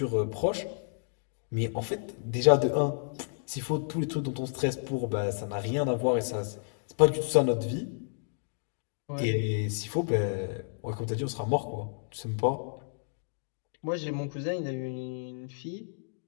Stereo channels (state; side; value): silent; right; digital silence